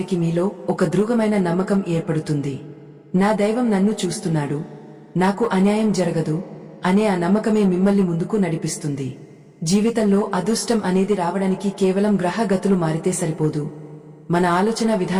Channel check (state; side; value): identical; both; correlation 1.00